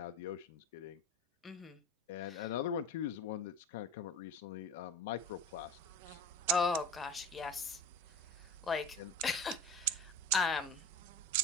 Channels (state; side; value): normal; both; correlation 0.32